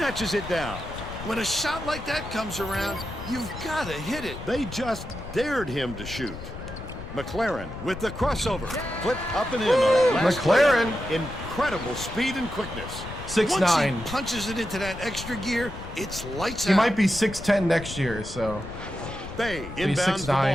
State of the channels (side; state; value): left; noise; rumble, 11 dB below the sound